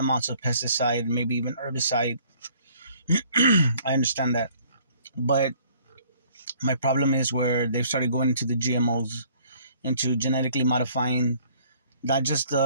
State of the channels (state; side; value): inverted; both; correlation -0.58